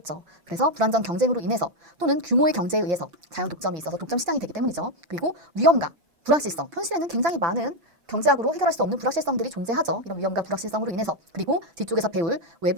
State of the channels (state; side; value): late; left; 6.0 ms